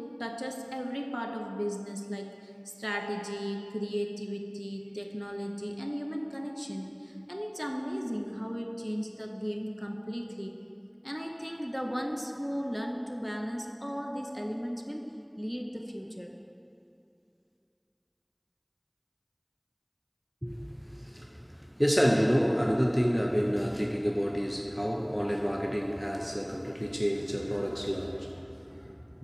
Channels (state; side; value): identical; both; correlation 1.00